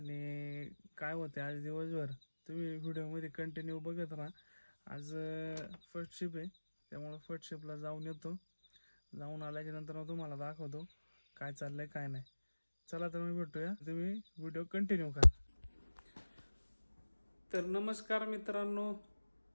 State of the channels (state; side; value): inverted; both; correlation -1.00